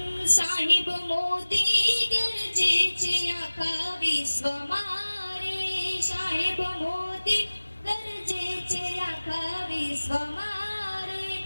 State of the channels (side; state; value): both; inverted; correlation -1.00